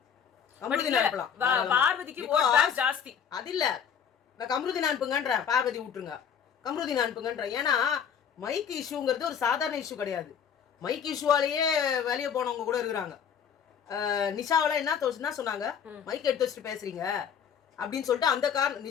கம்ருதீன் அனுப்பலாம், பார்வதிக்கு ஓட் பேங்க் ஜாஸ்தி. அது இல்ல, நான் கம்ருதீன் அனுப்புங்கன்ற, பார்வதி விட்டுருங்க, கம்ருதீன் அனுப்புங்கன்ற. ஏன்னா மைக் இஷ்யூங்கிறது ஒரு சாதாரண இஷ்யூ கிடையாது. மைக் இஷ்யூவாலேயே வெளியே போனவங்க கூட இருக்கிறாங்க. நிஷாவெல்லாம் என்ன சொன்னாங்க, மைக் எடுத்து வச்சுட்டு பேசுறீங்க அப்படின்னு சொல்லிட்டு அந்த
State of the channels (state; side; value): quieter; right; 7.8 dB